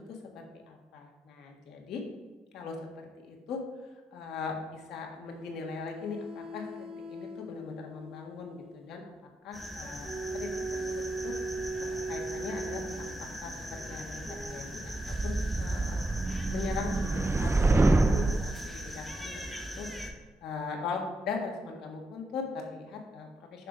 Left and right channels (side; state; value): both; normal; correlation 0.84